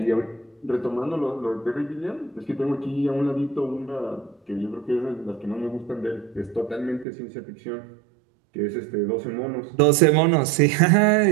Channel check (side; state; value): left; drops out; at 7.1 s